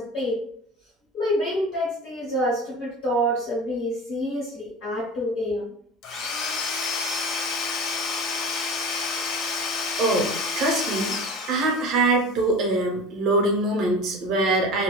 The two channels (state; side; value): normal; both; correlation 0.34